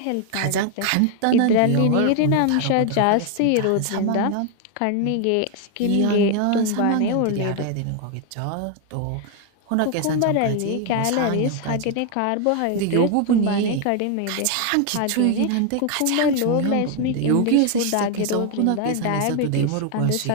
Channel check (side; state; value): both; different; correlation 0.01